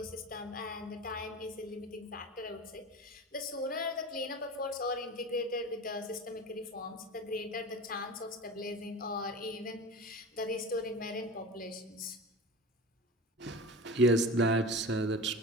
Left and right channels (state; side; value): normal; both; correlation 0.32